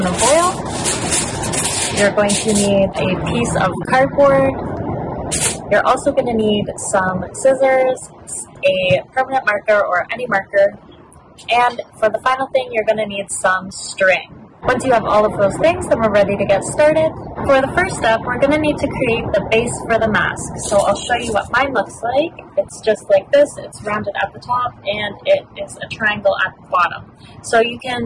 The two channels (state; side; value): identical; both; correlation 1.00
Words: foil. You're going to need a piece of cardboard. You're also going to need some scissors, a permanent marker or any marker, and for the final thing, you're going to need some string. Once you have all of those things, then we're ready to get started. For the first step, we're going to need to create the base for the mask. So I'll show you what mine looks like. It's just like this. It's rounded at the top and it is a triangle at the bottom. So you